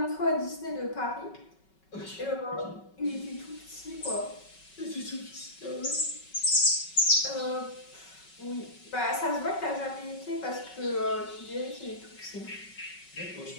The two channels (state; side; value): late; right; 5.3 ms